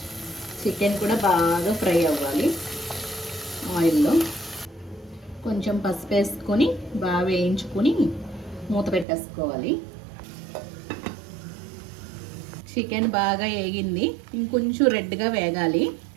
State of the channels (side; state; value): left; drops out; at 9.1 s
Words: చికెన్ కూడా బాగా ఫ్రై అవ్వాలి ఆయిల్లో. కొంచెం పసుపు వేసుకొని బాగా వేయించుకొని మూత పెట్టేసుకోవాలి. చికెన్ బాగా వేగింది, ఇంకొంచెం రెడ్గా వేగాలి.